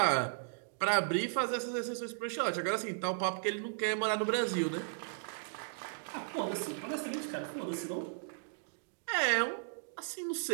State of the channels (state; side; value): silent; left; digital silence